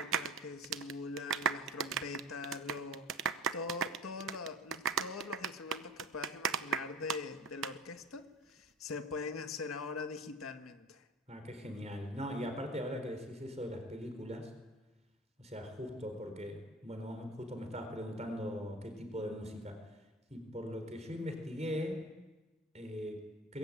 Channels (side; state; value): both; normal; correlation 0.37